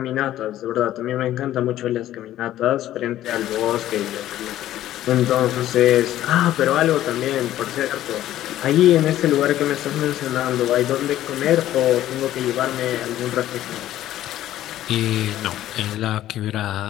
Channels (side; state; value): right; quieter; 13.3 dB